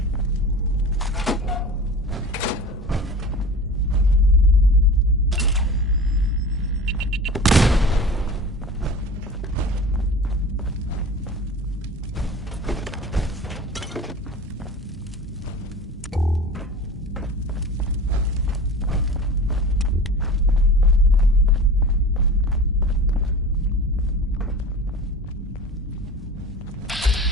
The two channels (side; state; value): both; normal; correlation 0.36